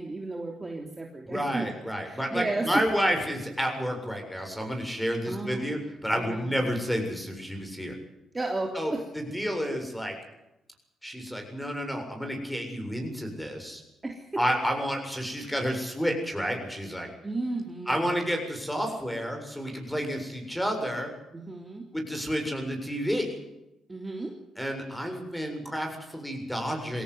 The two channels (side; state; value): both; normal; correlation 0.91